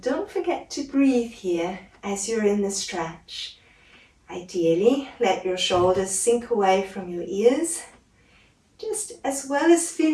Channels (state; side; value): identical; both; correlation 1.00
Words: don't forget to breathe here as you're in the stretch. Ideally, let your shoulders sink away from your ears. Just as well as